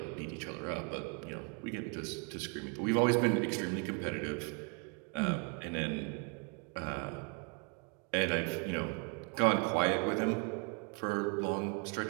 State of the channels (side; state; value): left; quieter; 35.5 dB